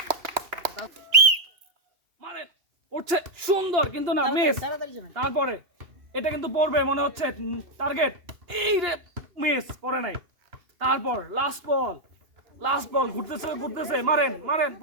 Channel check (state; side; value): late; left; 2.9 ms